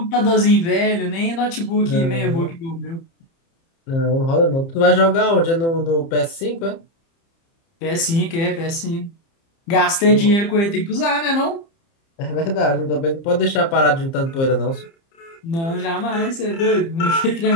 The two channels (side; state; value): right; late; 30 ms